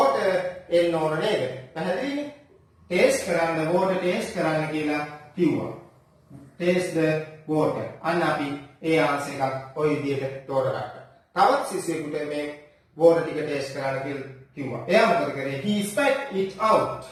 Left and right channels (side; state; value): both; identical; correlation 1.00